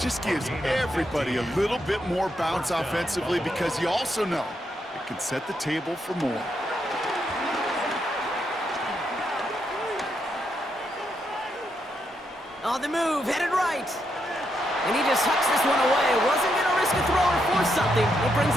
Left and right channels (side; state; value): both; normal; correlation 0.80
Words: gives everybody a little bit more bounce offensively because you also know it can set the table for more. On the move, headed right. And he just hucks this one away. Wasn't going to risk a throw or force something. It brings